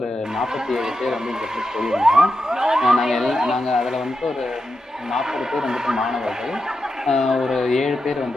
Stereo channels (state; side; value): normal; both; correlation 0.88